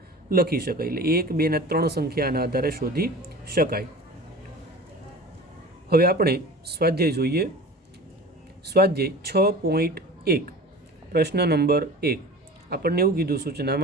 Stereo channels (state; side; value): normal; both; correlation 0.38